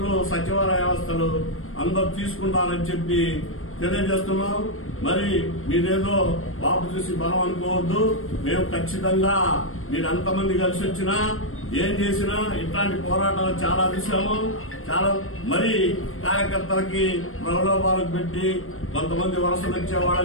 సచివాలయ వ్యవస్థలు అందరూ తీసుకుంటారని చెప్పి తెలియజేస్తున్నాం. మరి మీరేదో బాబు చూసి బలం అనుకోవద్దు. మేము ఖచ్చితంగా మీరు ఎంతమంది కలిసి వచ్చినా ఏం చేసినా ఇట్లాంటి పోరాటాలు చాలా చూసాము. చాలా మరి కార్యకర్తలకి ప్రలోభాలకు పెట్టి కొంతమంది వలసలు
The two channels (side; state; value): right; late; 0.61 ms